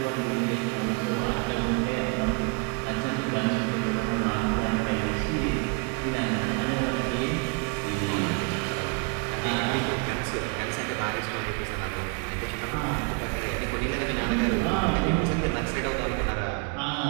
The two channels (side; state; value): left; quieter; 32.0 dB